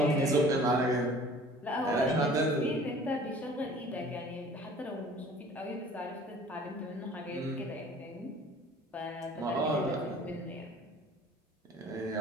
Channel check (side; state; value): both; normal; correlation 0.49